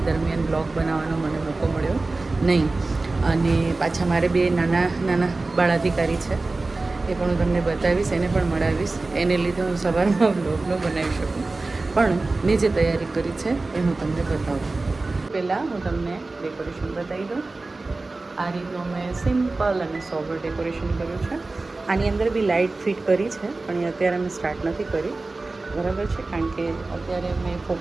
દરમિયાન બ્લોગ બનાવવાનો મને મોકો મળ્યો નહીં. અને પાછા મારે બે નાના બાળાધિકારી છે, એ પણ હું તમને બતાવીશ, એને પણ મળાવીશ. એને લીધે હું સવારમાં બ્લોગ ન બનાવી શકું, પણ મેં જે તૈયારી કરી છે એ હું તમને બતાવું. પહેલાં હું તમને ડેકોરેશન બતાવી દઉં. આ રીતનું મેં સિમ્પલ અને સોબર ડેકોરેશન કર્યું છે. આની અંદર બી લાઇટ ફિટ કરી છે, પણ એ અત્યારે મેં સ્ટાર્ટ નથી કરી, બરાબર છે, કારણ કે અત્યારે મેં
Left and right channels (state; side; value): quieter; left; 3.4 dB